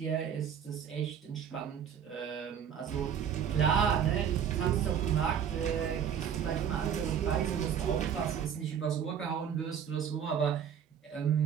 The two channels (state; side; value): quieter; left; 8.3 dB